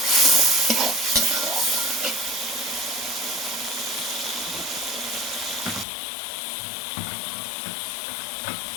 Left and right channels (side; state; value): right; drops out; at 5.9 s